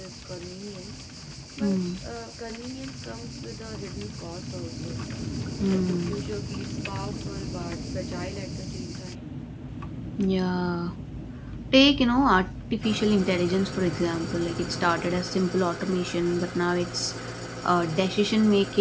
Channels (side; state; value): both; identical; correlation 1.00